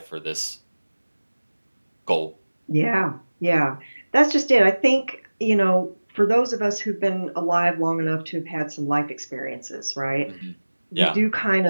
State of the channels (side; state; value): both; inverted; correlation -1.00